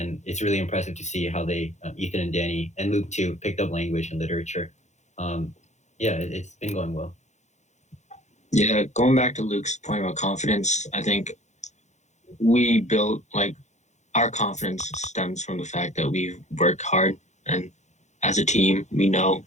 it's really impressive to see how they, Ethan and Danny and Luke too, picked up language and literature. Yeah, it's been going well. Yeah, going back to Luke's point about confidence, I think we built our confidence stems from the fact that we work hard, and as a team, we know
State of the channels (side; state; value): right; late; 0.34 ms